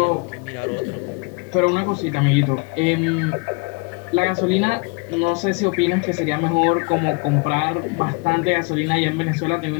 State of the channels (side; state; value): right; quieter; 30.5 dB